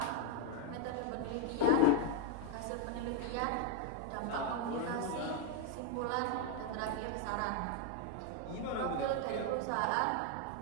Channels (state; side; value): different; both; correlation 0.00